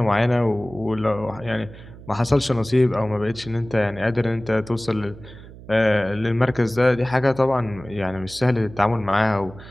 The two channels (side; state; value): right; noise; hum, 17 dB below the sound